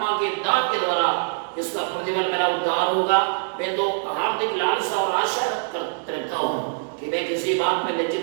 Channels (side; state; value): left; silent; digital silence